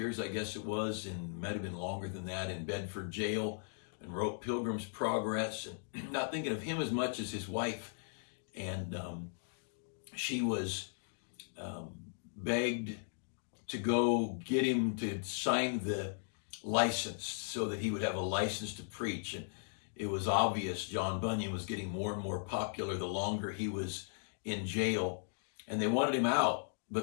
I guess it was, and might have been longer than that, in Bedford jail, and wrote Pilgrim's Progress, and not thinking of him as much as his wife. And she was begged to go get him to sign the license so that he would have a license to preach. And it was obvious John Bunyan was getting more and more popular the longer he was in jail. And they wanted him out,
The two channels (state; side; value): silent; right; digital silence